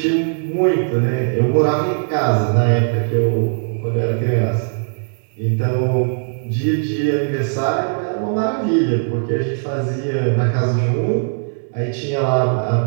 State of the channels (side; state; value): left; silent; digital silence